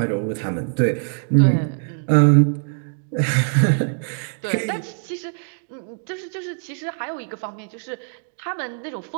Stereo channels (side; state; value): left; silent; digital silence